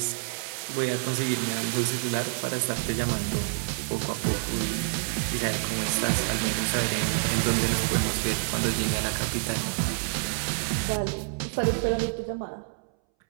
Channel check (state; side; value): silent; left; 60 dB below the other